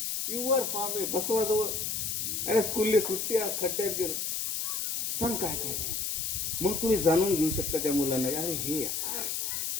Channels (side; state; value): left; noise; hiss, 1 dB below the sound